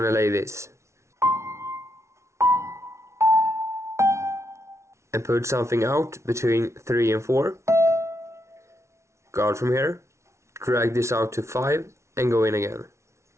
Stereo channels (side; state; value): left; late; 0.13 ms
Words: to lay this. And put something out between 3 and 4. Guard from here, drag this out to 5 and go in again.